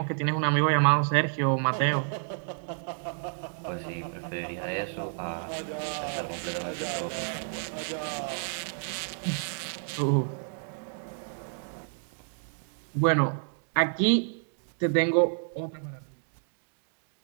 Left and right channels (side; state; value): left; silent; digital silence